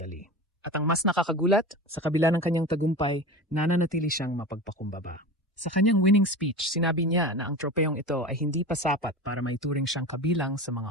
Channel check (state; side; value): normal; both; correlation 0.30